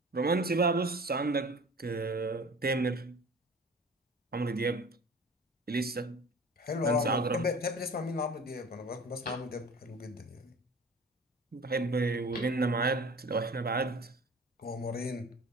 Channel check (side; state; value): both; normal; correlation 0.42